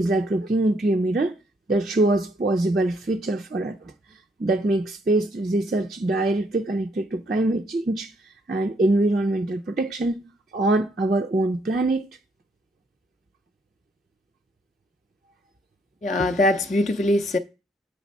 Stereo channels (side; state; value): both; normal; correlation 0.70